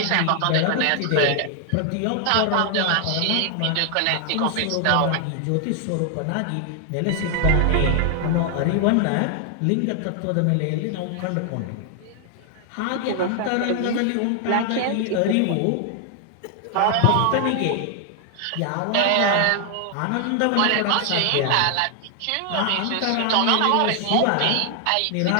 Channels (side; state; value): both; different; correlation 0.00